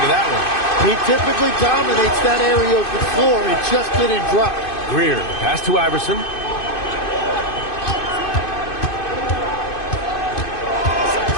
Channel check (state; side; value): late; right; 2.5 ms